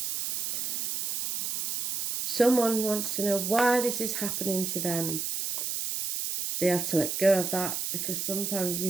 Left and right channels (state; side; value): noise; right; hiss, 2 dB below the sound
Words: Someone wants to know why this is happening to them. They have to let go of that, because sometimes